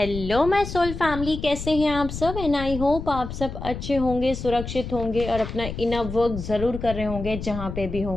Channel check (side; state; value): left; noise; rumble, 8 dB below the sound